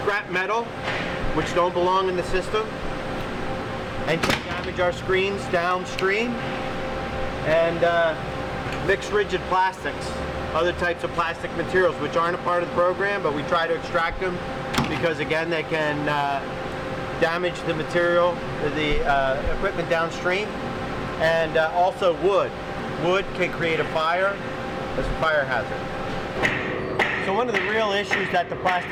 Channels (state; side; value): identical; both; correlation 1.00